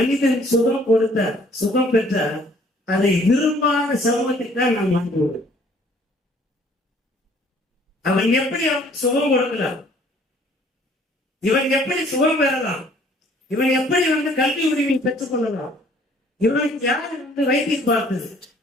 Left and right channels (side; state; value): both; normal; correlation 0.58